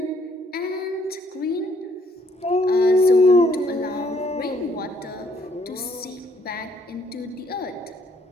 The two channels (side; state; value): both; normal; correlation 0.67